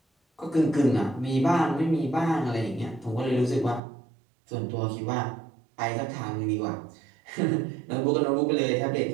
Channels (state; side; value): drops out; left; at 3.8 s